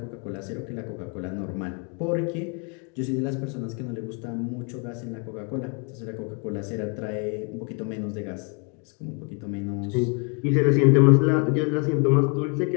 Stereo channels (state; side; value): quieter; right; 36.6 dB